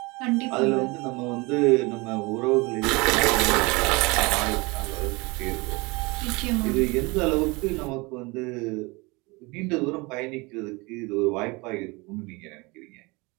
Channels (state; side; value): quieter; left; 25.6 dB